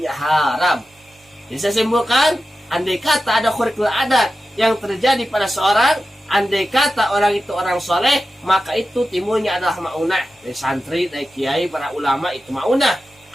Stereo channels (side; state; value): both; normal; correlation 0.93